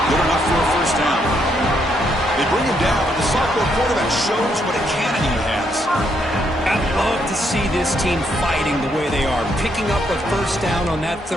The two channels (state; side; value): normal; both; correlation 0.75